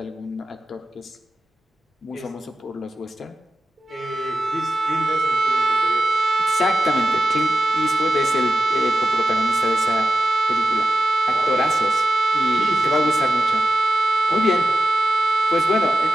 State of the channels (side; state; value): both; normal; correlation 0.92